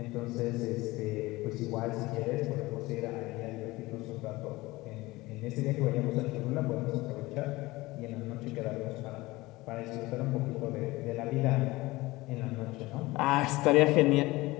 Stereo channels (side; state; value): right; quieter; 20.3 dB